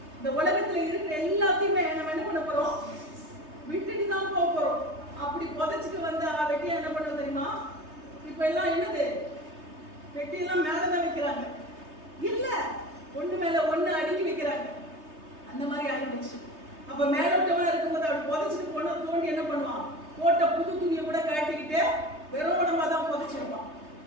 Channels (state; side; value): late; left; 3.3 ms